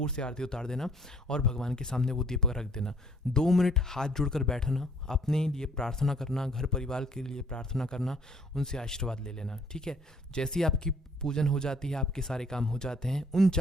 से आरती उतार देना और भगवान के सामने वो दीपक रख देना। 2 मिनट हाथ जोड़कर बैठना, अपने लिए प्रार्थना करना, घर परिवार के लिए प्रार्थना करना, उनसे आशीर्वाद ले लेना, ठीक है। जैसे ही आपकी पूजन हो जाती है, आपके सारे काम हो जाते हैं, उन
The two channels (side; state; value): both; normal; correlation 0.60